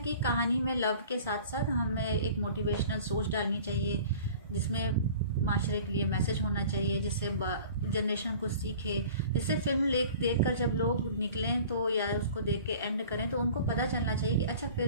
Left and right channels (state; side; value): inverted; both; correlation -0.44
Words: कहानी में लव के साथ साथ हमें एक मोटिवेशनल सोच डालनी चाहिए, जिसमें माशरे के लिए मैसेज होना चाहिए, जिससे जनरेशन कुछ सीखे, जिससे फिल्म देख कर जब लोग निकलें तो या उसको देख के एंड करें तो उनको पता चलना चाहिए कि अच्छा